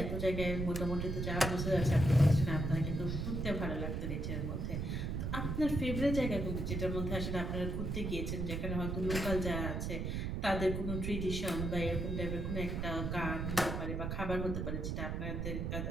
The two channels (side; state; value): right; noise; rumble, 2 dB below the sound